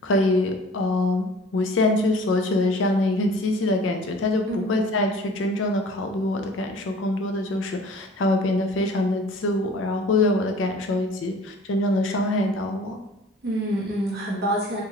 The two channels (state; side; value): normal; both; correlation 0.48